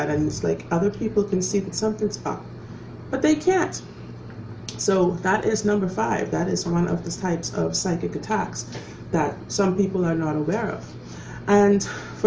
and it's like other people can see that something's up, but they can't. So that is number 5. That is one of the types of psychic attacks that some people are not aware of. And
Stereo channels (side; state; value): both; identical; correlation 1.00